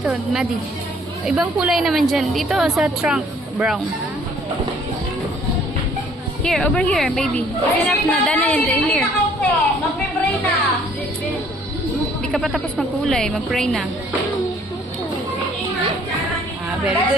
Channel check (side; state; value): both; normal; correlation 0.59